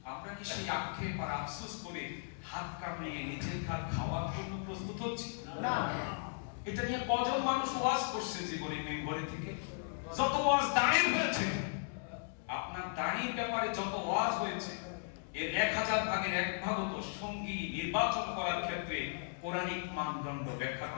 আমরা কি সেই আক্ষেপ আর আফসোস করে হাত কামড়িয়ে নিজের হাত খাওয়ার জন্য প্রস্তুত হচ্ছি? না। এটা নিয়ে কজন মানুষ ওয়াজ করছে জীবনে মেম্বরে থেকে? যত ওয়াজ দাঁড়িয়ে হয়েছে, আপনার দাঁড়ির ব্যাপারে যত ওয়াজ হয়েছে, এর 1000 ভাগের 1 ভাগও তো সঙ্গী নির্বাচন করার ক্ষেত্রে কোরআনিক মানদণ্ড ব্যাখ্যা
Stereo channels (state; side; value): silent; right; digital silence